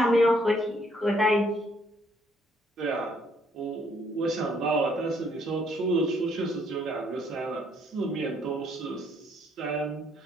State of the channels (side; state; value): both; normal; correlation 0.67